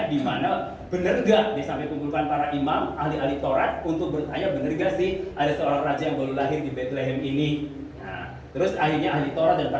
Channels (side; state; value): both; identical; correlation 1.00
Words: di mana benar gak, dia sampai kumpulkan para imam, ahli-ahli Taurat untuk bertanya benar gak sih ada seorang raja yang baru lahir di Bethlehem ini. Terus akhirnya ahli Taurat dan